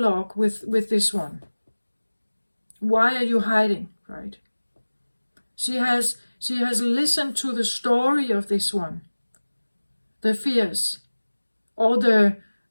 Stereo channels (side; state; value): both; inverted; correlation -1.00